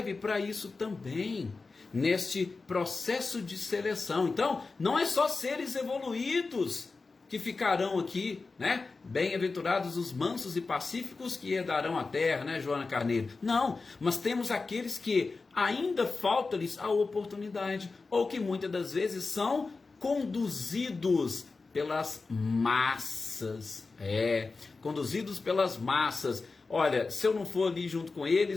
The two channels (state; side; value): quieter; right; 4.0 dB